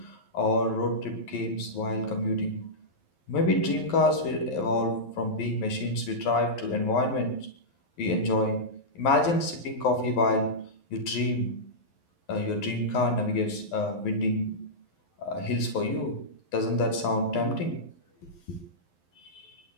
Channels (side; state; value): right; late; 11 ms